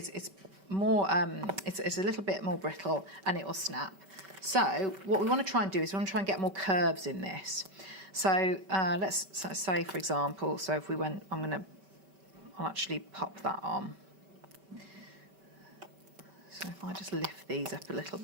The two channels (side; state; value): left; late; 5.2 ms